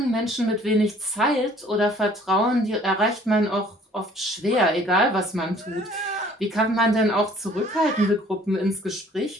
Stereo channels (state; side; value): normal; both; correlation 0.56